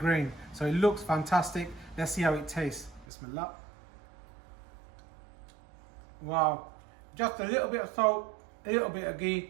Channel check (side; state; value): left; drops out; at 3.1 s